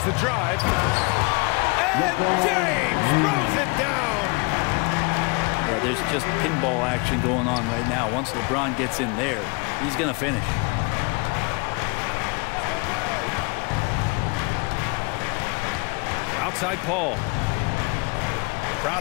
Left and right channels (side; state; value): right; quieter; 29.5 dB